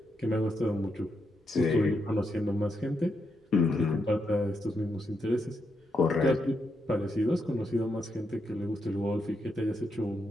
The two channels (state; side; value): normal; both; correlation 0.82